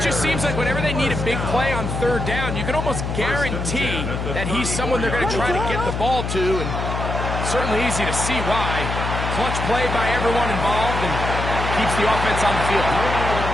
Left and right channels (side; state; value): left; noise; hum, 3 dB below the sound